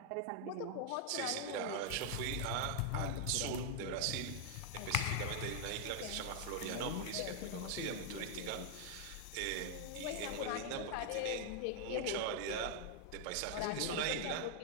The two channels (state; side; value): different; both; correlation 0.00